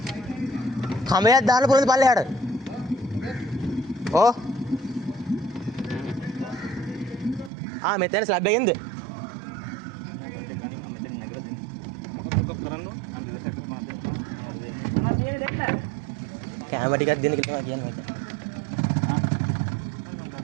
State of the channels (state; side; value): drops out; left; at 7.5 s